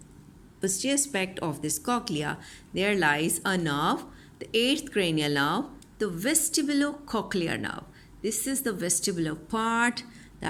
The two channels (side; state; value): both; identical; correlation 1.00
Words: posterior aspect of this cochlea, there lies a nerve, the 8th cranial nerve, the vestibulocochlear nerve. This is the vestibular part